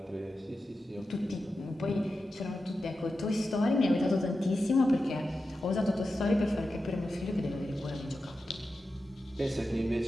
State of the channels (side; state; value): both; normal; correlation 0.91